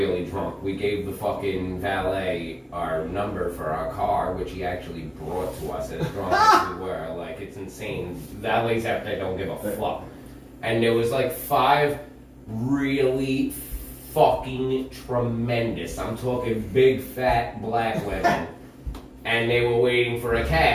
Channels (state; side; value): identical; both; correlation 1.00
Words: drunk. We gave the fucking valet our number for our car, which he actually brought to us as drunk as we were. Like, it's insane. Valets out there don't give a fuck. And there was like 5 really fucking tremendous, I'm talking big fat black women, and they were waiting for a